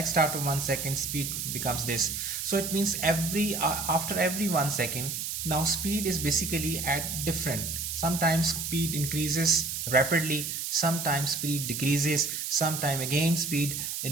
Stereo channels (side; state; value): right; noise; hiss, 4 dB below the sound